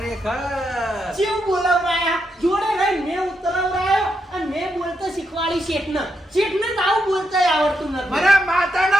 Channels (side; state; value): both; normal; correlation 0.82